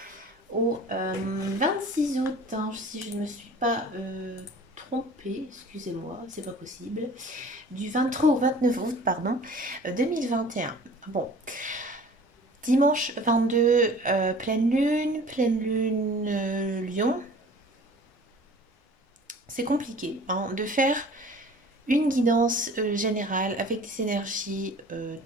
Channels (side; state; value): both; normal; correlation 0.46